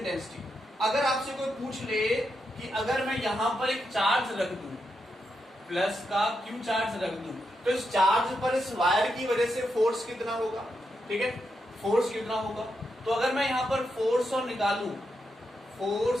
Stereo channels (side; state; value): both; normal; correlation 0.84